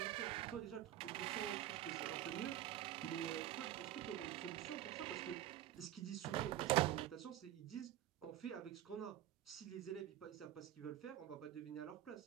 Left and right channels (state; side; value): quieter; left; 12.9 dB